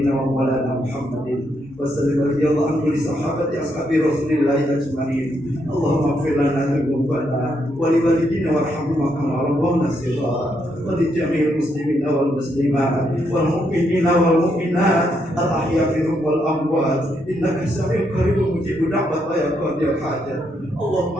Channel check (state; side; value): normal; both; correlation 0.77